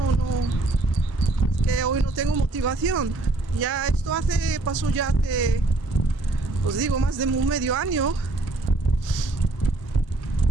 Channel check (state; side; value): quieter; left; 3.1 dB